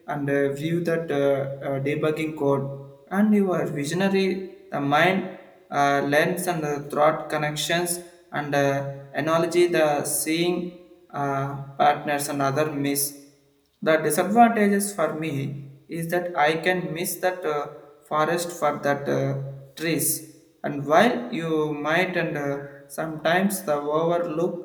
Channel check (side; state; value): both; identical; correlation 1.00